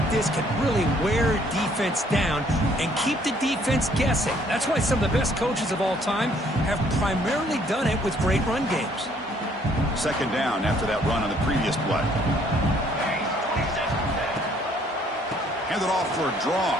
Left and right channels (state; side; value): normal; both; correlation 0.63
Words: this can really wear defense down and keep the defense guessing. That's why some of the best coaches of all time have primarily done it with great run games. 2nd down after that run on the previous play. Hand it off for a draw.